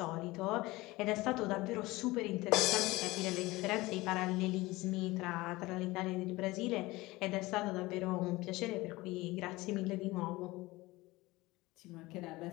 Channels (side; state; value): right; quieter; 20.5 dB